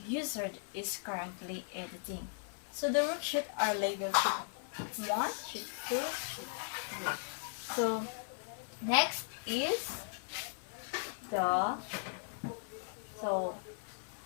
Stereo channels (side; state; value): right; silent; digital silence